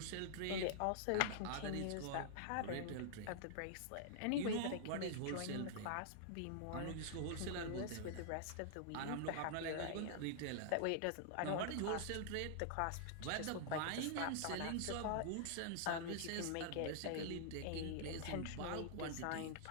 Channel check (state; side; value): different; both; correlation -0.01